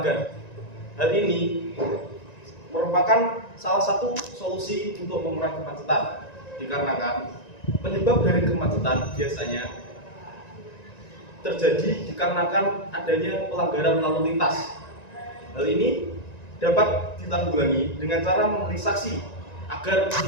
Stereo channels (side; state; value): right; late; 1.9 ms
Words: Hal ini merupakan salah satu solusi untuk mengurangi kemacetan, dikarenakan penyebab dari kemacetan biasanya terjadi dikarenakan adanya pelanggaran lalu lintas. Hal ini dapat ditanggulangi dengan cara memberi saksi agar